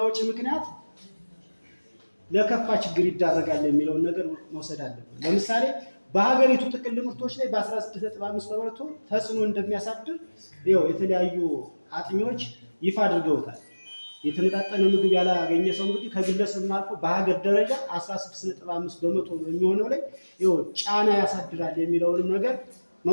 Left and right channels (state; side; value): inverted; both; correlation -1.00